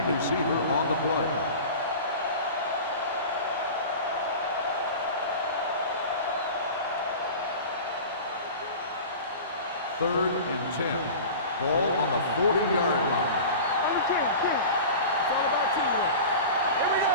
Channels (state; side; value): inverted; both; correlation -0.35